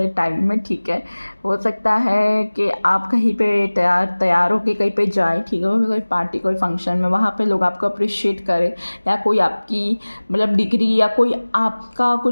टाइम में, ठीक है। हो सकता है कि आप कहीं पे तैयार होके कहीं पे जाए, ठीक है, कोई पार्टी कोई फंक्शन में, वहाँ पे लोग आपको अप्रिशिएट करें, या कोई आपकी मतलब डिग्री या कोई आपका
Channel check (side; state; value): both; inverted; correlation -1.00